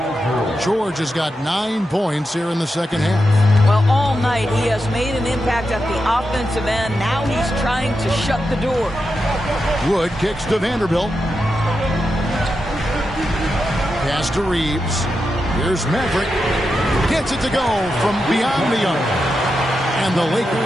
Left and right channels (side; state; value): both; normal; correlation 0.88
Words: George has got 9 points here in the second half. Well, all night he has made an impact at the offensive end. Now he's trying to shut the door. Wood kicks to Vanderbilt. Pass to Reeves. Here's Maverick. Gets it to go from beyond the arc. And the